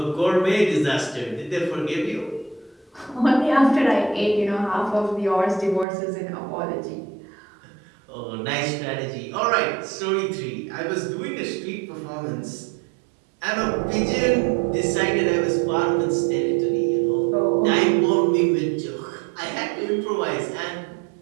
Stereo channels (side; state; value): left; drops out; at 5.9 s